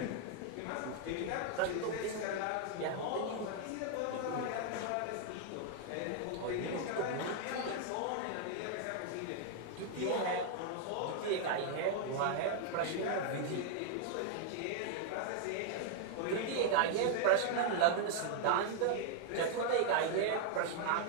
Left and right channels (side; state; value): both; different; correlation 0.00